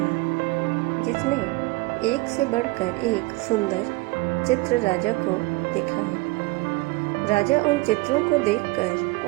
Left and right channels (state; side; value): quieter; left; 23.1 dB